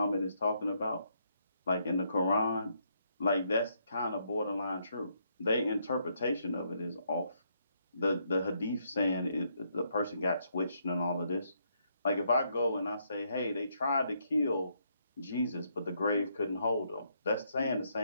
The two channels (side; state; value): both; inverted; correlation -0.74